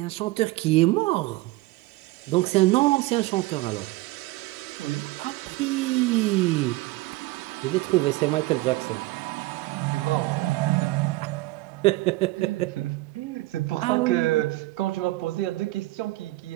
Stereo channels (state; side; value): quieter; left; 19.9 dB